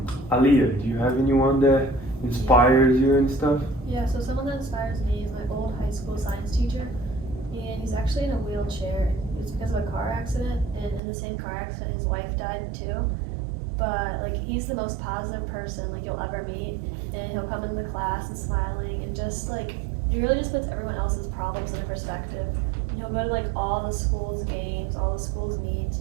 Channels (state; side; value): drops out; left; at 11.0 s